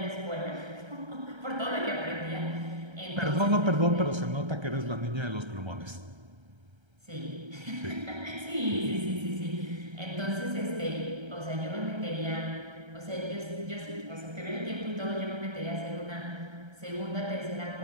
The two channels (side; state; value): left; late; 1.3 ms